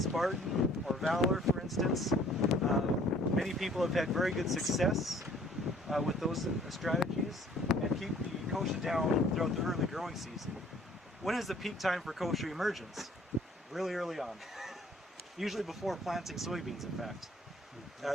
or Valor, for instance. Many people have had very good success with those strategies and keep the kochia down throughout the early growing season. When is the peak time for kochia emergence? Really early on. Usually before planting soybeans, in fact.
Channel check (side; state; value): both; normal; correlation 0.56